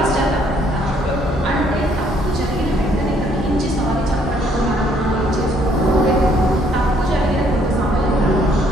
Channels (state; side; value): normal; both; correlation 0.66